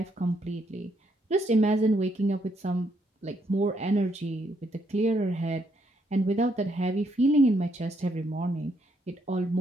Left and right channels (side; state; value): both; normal; correlation 0.74